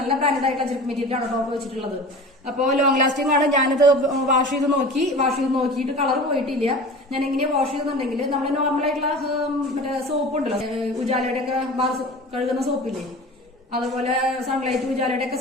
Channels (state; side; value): normal; both; correlation 0.37